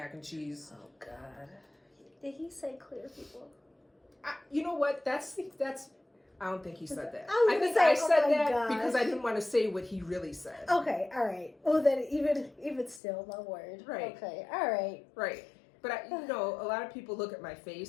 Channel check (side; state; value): right; drops out; at 13.0 s